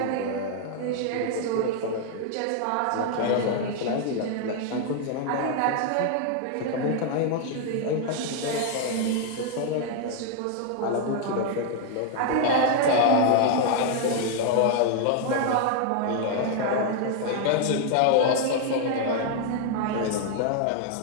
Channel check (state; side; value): different; both; correlation 0.00